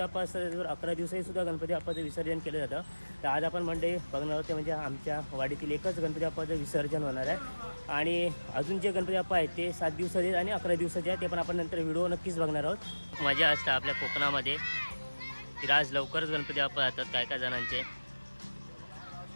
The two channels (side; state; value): both; inverted; correlation -1.00